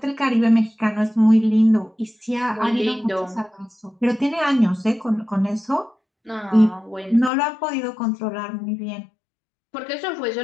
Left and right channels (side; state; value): right; drops out; at 7.3 s